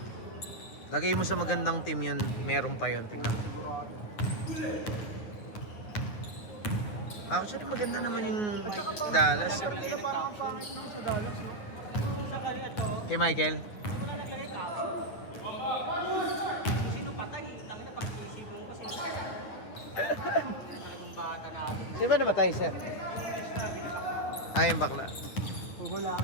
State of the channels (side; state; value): right; late; 9.3 ms